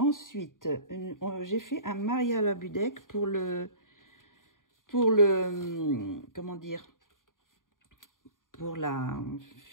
j'ai fait un Maria Labudek pour comment dire, pour la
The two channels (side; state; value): right; late; 0.89 ms